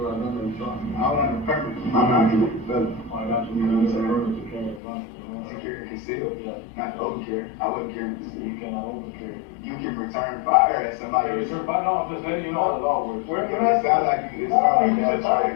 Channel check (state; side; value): drops out; right; at 4.8 s